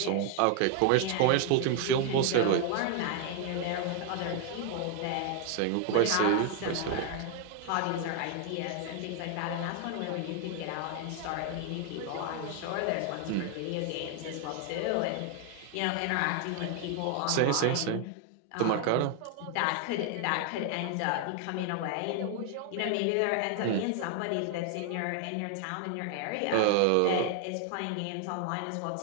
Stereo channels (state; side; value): different; both; correlation 0.00